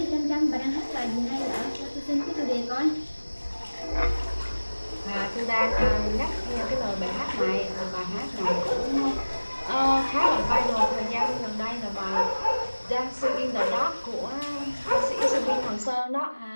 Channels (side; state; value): both; inverted; correlation -1.00